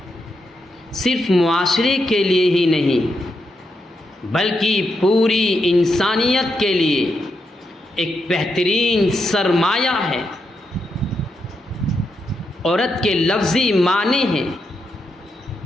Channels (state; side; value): normal; both; correlation 0.83